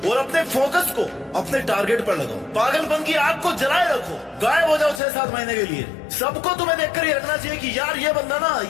और अपने फोकस को अपने टारगेट पर लगाओ। पागलपन की आग को जलाए रखो, गायब हो जाओ 6-7 महीने के लिए। सबको तुम्हें देखकर ये रखना चाहिए कि यार ये बंदा ना,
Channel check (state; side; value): drops out; right; at 5.0 s